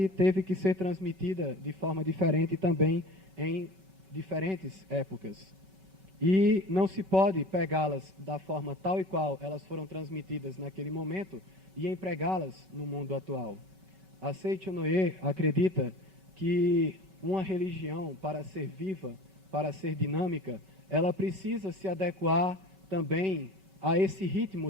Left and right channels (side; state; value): left; late; 5.3 ms